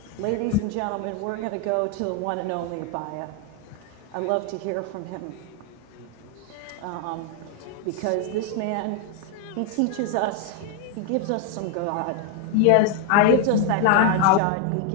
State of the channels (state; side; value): different; both; correlation 0.00